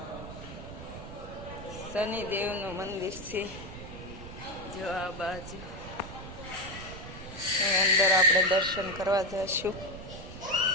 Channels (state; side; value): noise; right; rumble, 12 dB below the sound